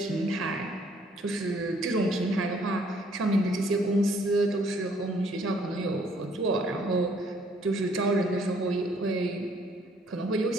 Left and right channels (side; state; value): both; normal; correlation 0.64